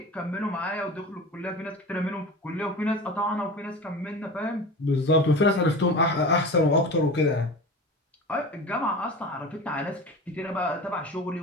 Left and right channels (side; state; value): both; normal; correlation 0.33